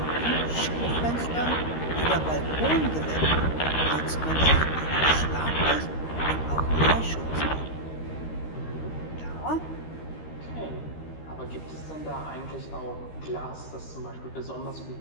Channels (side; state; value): right; late; 13 ms